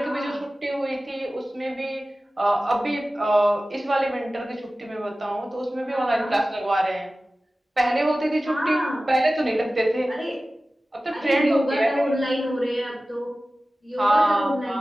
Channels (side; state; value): both; normal; correlation 0.96